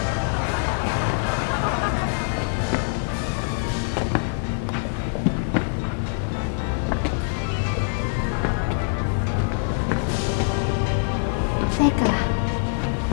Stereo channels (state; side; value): silent; right; 63 dB below the other